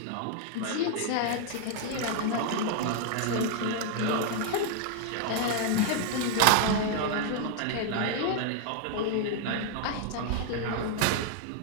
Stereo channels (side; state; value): both; different; correlation 0.00